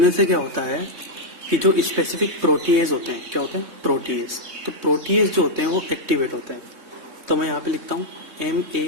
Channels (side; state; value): left; late; 3.6 ms